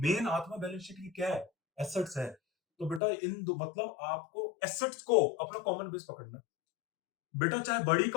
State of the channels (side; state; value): right; drops out; at 3.0 s